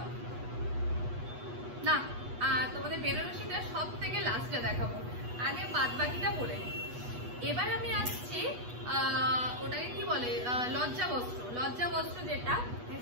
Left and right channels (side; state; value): left; late; 8.2 ms